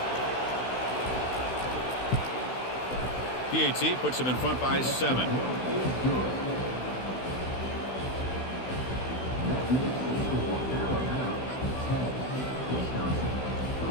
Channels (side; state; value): right; late; 16 ms